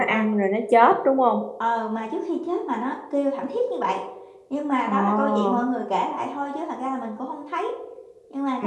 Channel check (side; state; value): both; identical; correlation 1.00